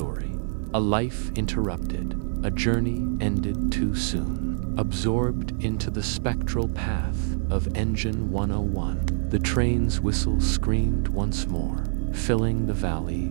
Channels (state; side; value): silent; left; 61 dB below the other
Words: A life interrupted, a journey ended too soon. Absorbed into the spectral path of Engine 101, the train's whistle screamed once more, filling the